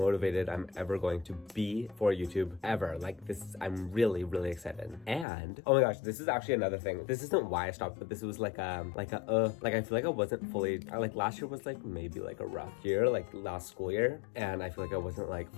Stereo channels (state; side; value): drops out; right; at 5.2 s